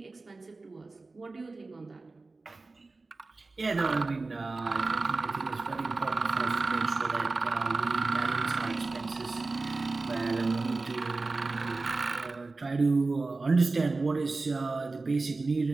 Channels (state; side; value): quieter; left; 3.6 dB